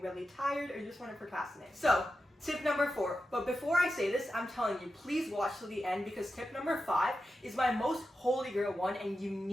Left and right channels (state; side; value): normal; both; correlation 0.90